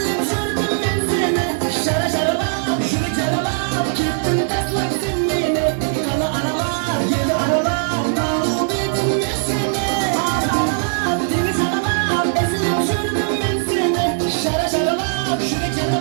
sürdüm ben seni. Şara şaraba, şunu çaraba, gittim taslak sen beni. Kala aralar, yedi aralar, davul dedim ben seni. Ara ara, temiz araba, eslim sürdüm ben seni. Şara şaraba, şunu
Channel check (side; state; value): left; silent; digital silence